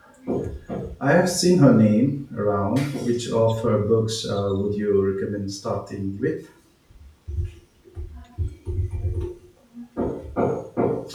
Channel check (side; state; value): both; identical; correlation 1.00